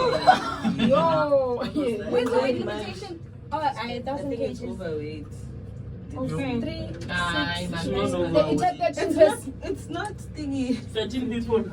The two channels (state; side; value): identical; both; correlation 1.00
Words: Yo, where's the invitation? Oh, I think it's overweight. Okay. 3, 6, it's not thingy. 13 people.